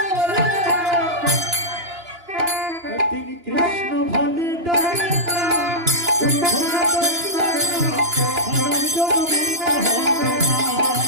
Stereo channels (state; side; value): late; left; 2.9 ms